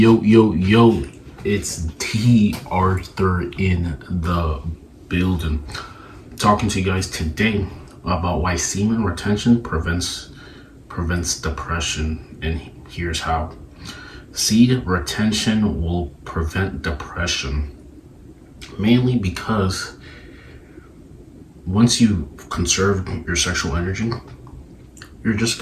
yo, yo, it's D.Arthur in the building. Talking to you guys today about why semen retention prevents depression, and here's how. Seed retention will prevent depression, mainly because once you conserve your sexual energy, you're just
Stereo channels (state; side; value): identical; both; correlation 1.00